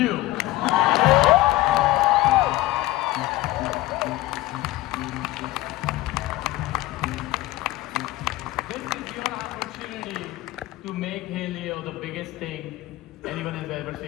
This is your opportunity to make Hey Leo the biggest thing anyone has ever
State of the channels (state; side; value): quieter; right; 17.5 dB